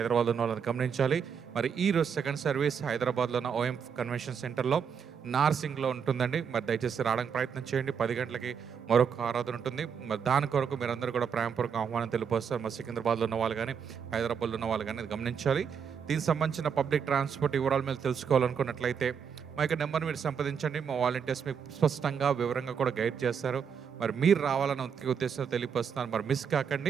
ఉన్న వాళ్ళని గమనించాలి. మరి ఈరోజు సెకండ్ సర్వీస్ హైదరాబాద్లో ఉన్న ఓఎం కన్వెన్షన్ సెంటర్లో నార్సింగ్లో ఉంటుందండి. మరి దయచేసి రావడానికి ప్రయత్నం చేయండి. 10 గంటలకి మరొక ఆరాధన ఉంటుంది. మరి దాని కొరకు మీరందరూ కూడా ప్రేమపూర్వక ఆహ్వానం తెలియపరుస్తారు. మరి సికింద్రాబాద్లో ఉన్న వాళ్ళు కానీ, హైదరాబాద్లో ఉన్న వాళ్ళు కానీ గమనించాలి. దీనికి సంబంధించిన పబ్లిక్ ట్రాన్స్పోర్ట్ వివరాలు మీరు తెలుసుకోవాలనుకున్నట్లయితే మా యొక్క నెంబర్ మీరు సంప్రదించండి. మా వాలంటీర్స్ మీకు స్పష్టంగా వివరంగా కూడా గైడ్ చేస్తారు. మరి మీరు రావాలని ఉద్దేశంతో తెలియపరుస్తున్నారు. మరి మిస్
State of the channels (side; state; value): left; quieter; 7.0 dB